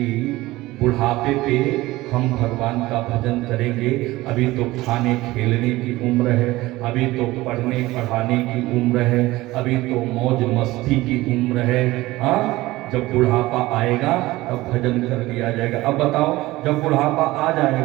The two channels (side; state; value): left; quieter; 18.6 dB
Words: बुढ़ापे पे हम भगवान का भजन करेंगे। अभी तो खाने खेलने की उम्र है, अभी तो पढ़ने पढ़ाने की उम्र है, अभी तो मौज मस्ती की उम्र है। हाँ, जब बुढ़ापा आएगा तब भजन कर लिया जाएगा। अब बताओ, जब बुढ़ापा आ